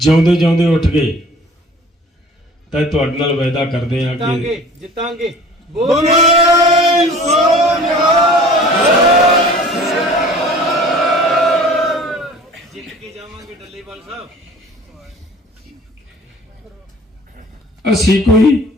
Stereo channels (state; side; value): normal; both; correlation 0.47